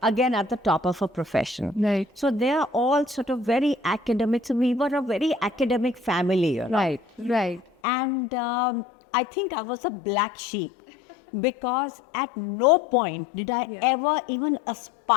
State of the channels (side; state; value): right; drops out; at 7.7 s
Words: Again, at the top of her profession. Right. So they are all sort of very academic. So we were a very academic family, you know. Right. Right. And I think I was a black sheep because at no point did I ever even